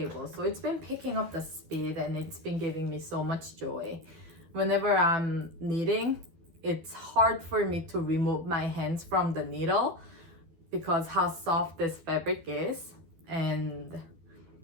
So it's been picking up the speed and it's been giving me so much joy. Whenever I'm knitting, it's hard for me to remove my hands from the needle because how soft this fabric is and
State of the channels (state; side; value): late; left; 12 ms